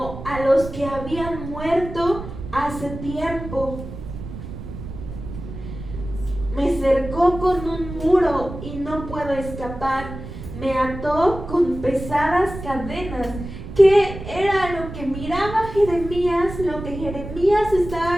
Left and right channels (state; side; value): noise; right; rumble, 10 dB below the sound